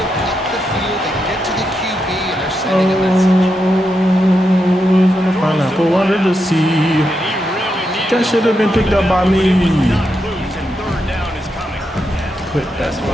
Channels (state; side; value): normal; both; correlation 0.84